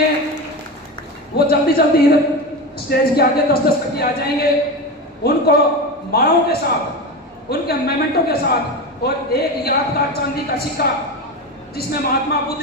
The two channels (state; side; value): normal; both; correlation 0.22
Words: वो जल्दी स्टेज के आगे 10-10 करके आ जाएंगे। उनको मालाओं के साथ, उनके मेमेंटो के साथ, और एक यादगार चांदी का सिक्का जिसमें महात्मा बुद्ध